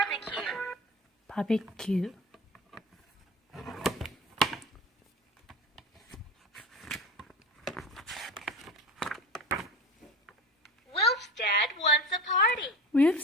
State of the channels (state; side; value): normal; both; correlation 0.33